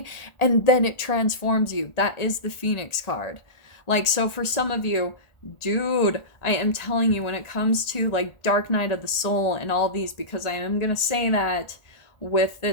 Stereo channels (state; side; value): late; right; 1.4 ms